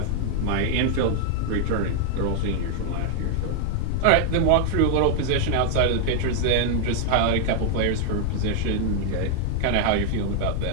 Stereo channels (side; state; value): both; different; correlation 0.00